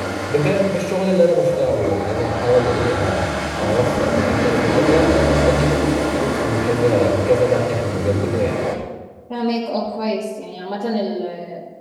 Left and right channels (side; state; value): both; identical; correlation 1.00